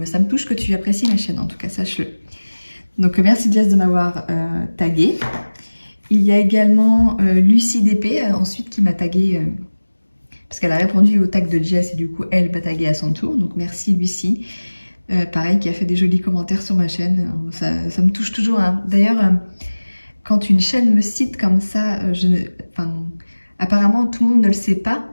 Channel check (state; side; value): inverted; both; correlation -1.00